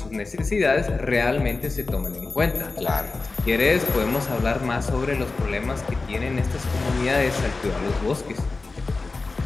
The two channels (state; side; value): quieter; right; 3.7 dB